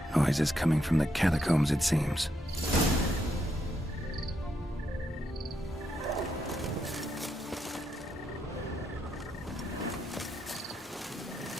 Noises coming from the catacombs, it seems.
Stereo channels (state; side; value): normal; both; correlation 0.80